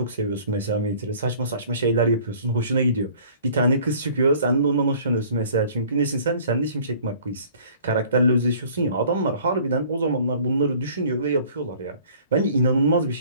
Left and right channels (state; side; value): inverted; both; correlation -0.52